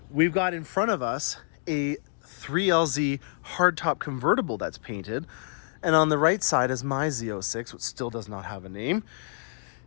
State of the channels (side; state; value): right; silent; digital silence